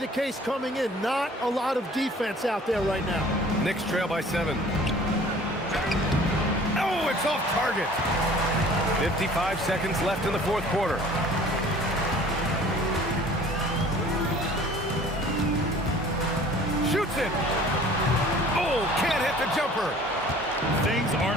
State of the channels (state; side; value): normal; both; correlation 0.49